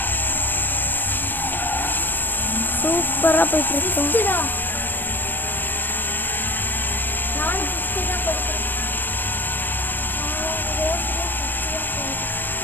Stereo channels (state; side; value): late; right; 0.093 ms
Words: சூப்பராக போயிட்டு இருக்கோம்.